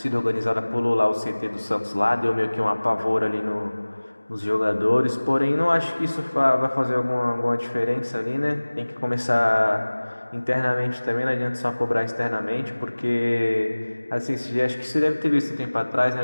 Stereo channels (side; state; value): both; inverted; correlation -1.00